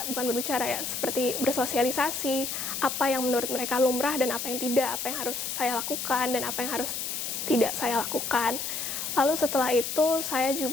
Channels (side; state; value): left; noise; hiss, 3 dB below the sound